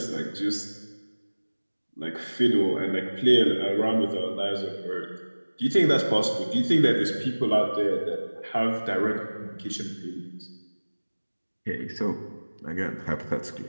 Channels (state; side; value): inverted; both; correlation -1.00